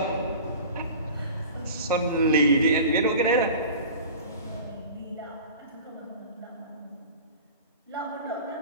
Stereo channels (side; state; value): both; inverted; correlation -0.38